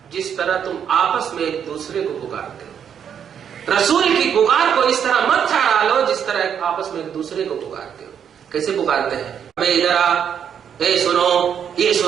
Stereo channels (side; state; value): left; quieter; 8.2 dB